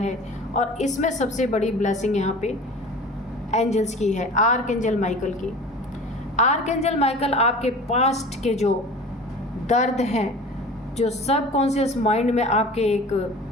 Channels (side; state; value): both; normal; correlation 0.40